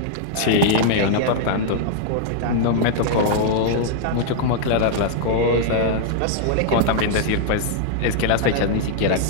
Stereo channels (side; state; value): both; different; correlation -0.01